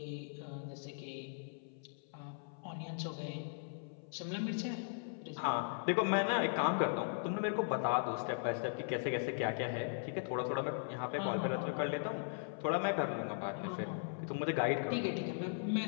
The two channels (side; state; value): right; silent; 52 dB below the other